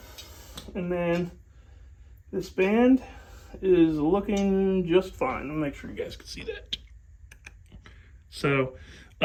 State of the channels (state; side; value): identical; both; correlation 1.00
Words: And then this band is looking just fine. I'll make sure you guys can see that. So